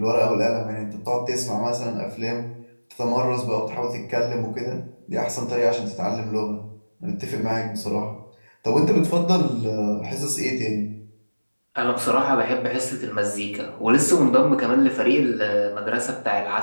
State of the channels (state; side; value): inverted; both; correlation -1.00